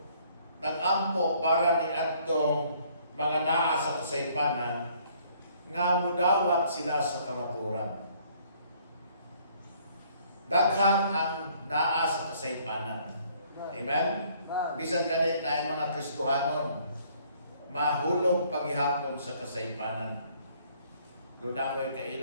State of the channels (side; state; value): both; inverted; correlation -0.62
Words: nag-ampo para ni atong mga naa sa kasaypanan nga mudawat sila sa kamaturan. Daghan ang naa sa kasaypanan. Amen? Bisan ganit na yung mga Kristohanon, mahulog paghihapon sa kasaypanan. Doon ako yung